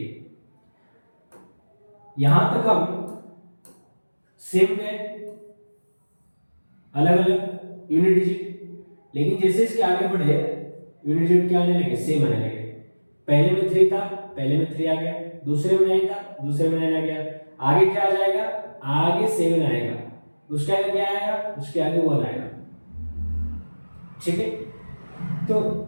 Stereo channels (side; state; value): both; inverted; correlation -1.00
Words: यहां तक हम सेम है, अलग अलग यूनिट डिजिट, लेकिन जैसे इसके आगे बढ़े यूनिट डिजिट क्या आने लगे, सेम आने लगे। पहले में 3 था, पहले में 3 आ गया, दूसरे में 9 था, दूसरे में 9 आ गया, आगे क्या आ जाएगा, आगे 7 आएगा, उसके आगे क्या आएगा, उसके आगे 1 आएगा, ठीक है। तो